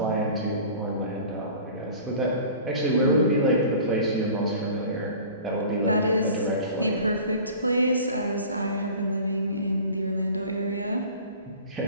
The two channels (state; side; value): inverted; both; correlation -0.42